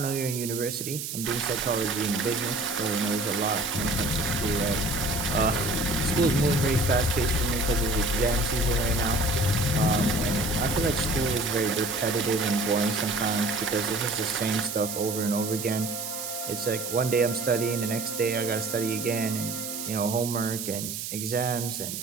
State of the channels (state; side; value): noise; right; hiss, 6 dB below the sound